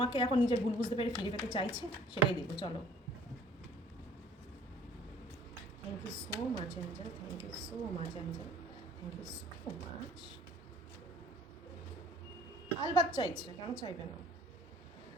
এখন নিজের ভুল বুঝতে পেরে ফিরে পেতে চাইছে, সেটাই দেখো। চলো। Thank you so much Angel, thank you so much Angel, thank you so much. আলবাত চাইছে, কেন চাইবে না?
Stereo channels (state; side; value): normal; both; correlation 0.54